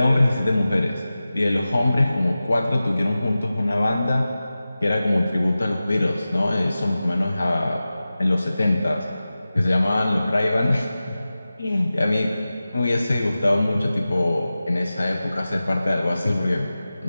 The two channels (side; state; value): both; inverted; correlation -0.95